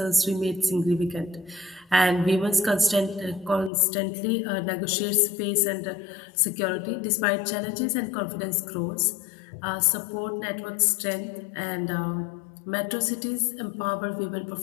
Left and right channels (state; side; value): drops out; right; at 3.7 s